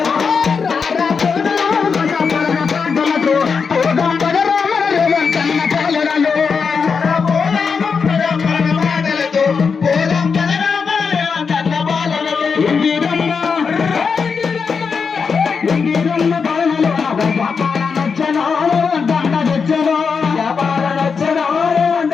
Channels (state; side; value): quieter; right; 5.6 dB